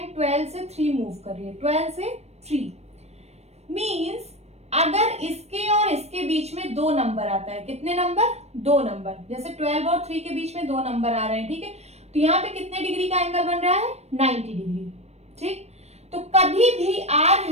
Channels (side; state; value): left; late; 0.31 ms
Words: 12 से 3 मूव कर रही है, 12 से 3 मीन्स अगर इसके और इसके बीच में 2 नंबर आता है, कितने नंबर? 2 नंबर, जैसे 12 और 3 के बीच में 2 नंबर आ रहे हैं, ठीक है, तो यहाँ पे कितने डिग्री का एंगल बन रहा है? 90 डिग्री। ठीक, तो कभी भी आर